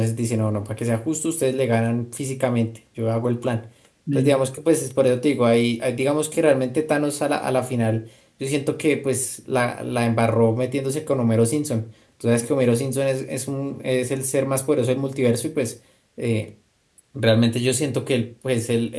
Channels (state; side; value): identical; both; correlation 1.00